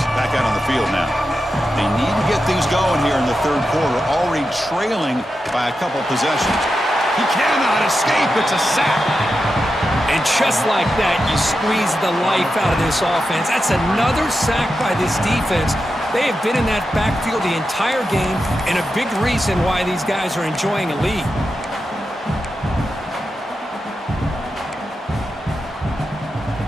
back out on the field now. They need to get things going here in the third quarter, already trailing by a couple possessions. He cannot escape. It's a sack. And just like that, you squeeze the life out of this offense. That's another sack by this defense. They have been in that backfield the entire game, and a big reason why these guys are enjoying a lead.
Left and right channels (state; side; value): normal; both; correlation 0.89